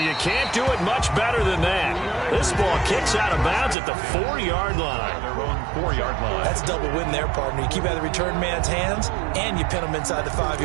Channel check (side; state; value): left; drops out; at 3.8 s